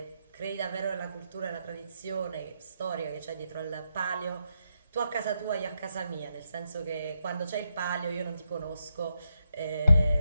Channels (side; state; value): both; inverted; correlation -0.83